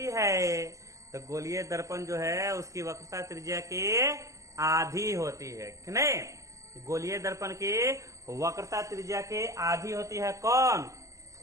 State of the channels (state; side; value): late; left; 0.16 ms